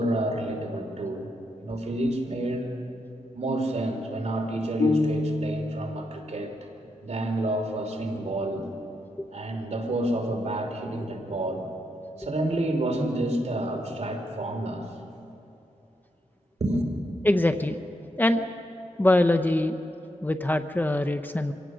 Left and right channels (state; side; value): normal; both; correlation 0.81